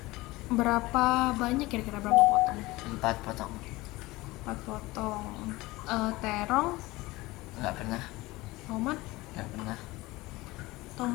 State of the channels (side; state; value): right; quieter; 20.4 dB